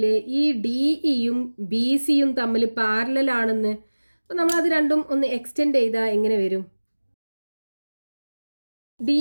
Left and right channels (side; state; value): both; inverted; correlation -1.00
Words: ഈ ഡി ഇയും ബി സിയും തമ്മിൽ പാരലൽ ആണെന്ന്. അപ്പോൾ നമ്മളത് രണ്ടും ഒന്ന് എക്സ്റ്റെൻഡ് ചെയ്താൽ എങ്ങനെ വരും?